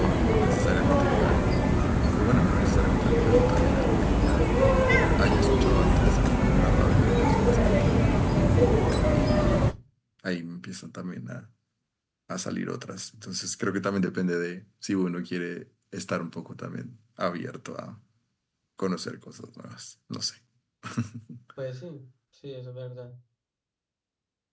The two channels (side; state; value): both; identical; correlation 1.00